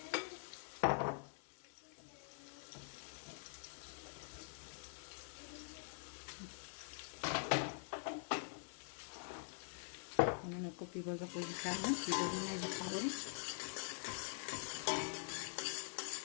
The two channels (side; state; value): right; silent; digital silence